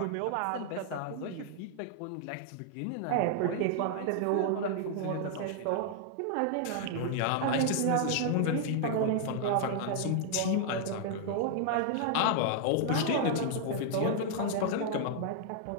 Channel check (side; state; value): both; different; correlation 0.00